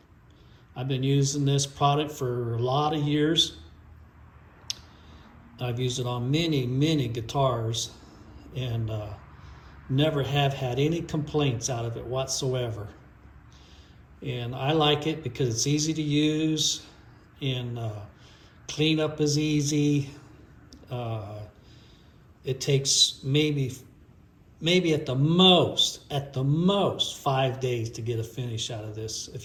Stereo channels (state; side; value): identical; both; correlation 1.00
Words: I've been using this product for a lot of years. I've used it on many, many guitars and never have had any complaints out of it whatsoever. And I like it because it's easy to use and cleanup is easy. It takes maybe at the most 5 days to get a finish out of this if